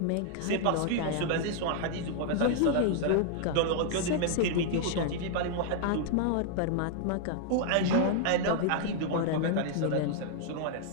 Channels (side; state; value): both; different; correlation -0.01